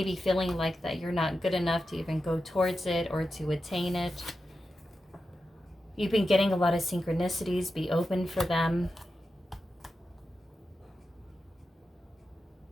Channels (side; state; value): both; normal; correlation 0.90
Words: feeling like that you're not good enough to even go towards it or to attain it. You've been getting a lot of synchronicities. Be open for them.